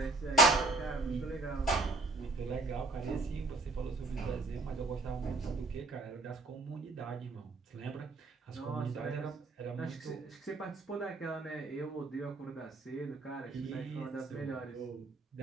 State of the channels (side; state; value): left; quieter; 3.2 dB